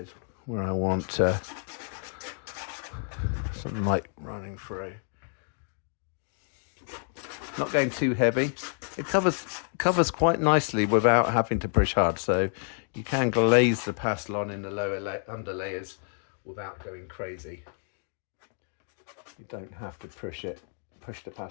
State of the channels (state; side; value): silent; right; 55 dB below the other